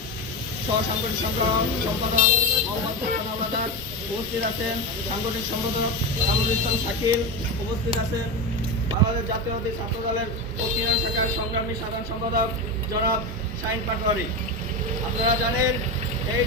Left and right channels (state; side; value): normal; both; correlation 0.17